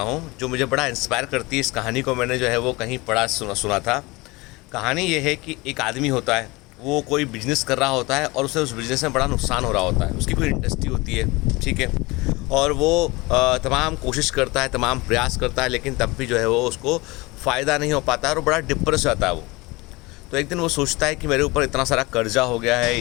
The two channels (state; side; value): quieter; right; 23.4 dB